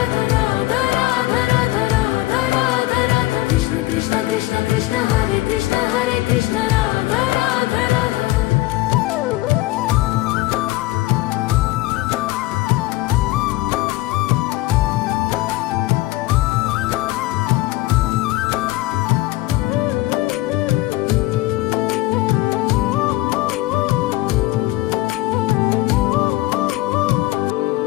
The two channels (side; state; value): right; quieter; 18.2 dB